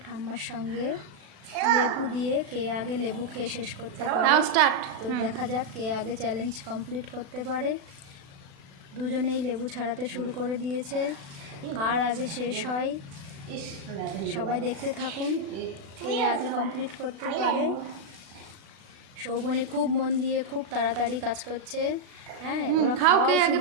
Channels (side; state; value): left; late; 36 ms